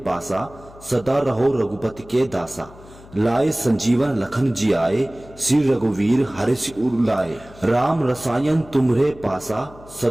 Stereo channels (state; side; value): noise; left; hum, 21 dB below the sound